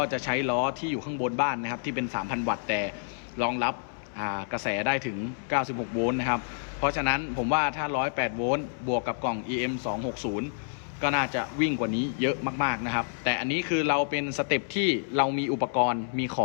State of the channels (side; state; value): right; silent; 59 dB below the other